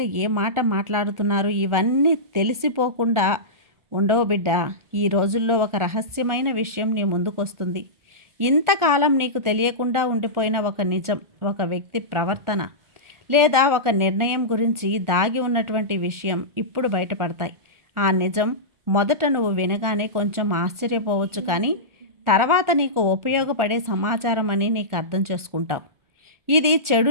ఏ మాట మాట్లాడుతున్నారు, ఇవన్నీ తెలిసిపోకుండా ఉండవు బిడ్డ. ఈ రోజుల్లో ఒక రహస్యమైన విషయం నీ ముందుకొస్తుంది. ఇంతకాలం నీకు తెలియకుండా ఉండిపోయిన ఒక నిజం, ఒక వ్యక్తి ప్రవర్తన లేదా ఒక నిర్ణయం గురించి దాగి ఉన్నటువంటి విషయం ఇప్పుడు బయటపడతాయి. ఆ నిజం మొదట నువ్వు వినగానే కొంచెం ఆశ్చర్యపోవచ్చు, కానీ తర్వాత నీకు ఉపయోగపడే సమాచారం అని నీకు అర్థం చేసుకుంటావు. ఇది చెడు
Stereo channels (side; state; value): left; late; 1.4 ms